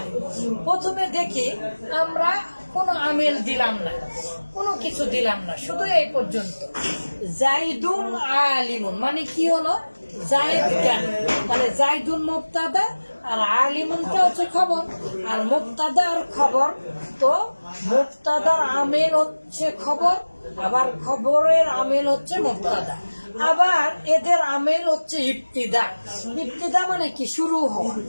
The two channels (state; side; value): inverted; both; correlation -1.00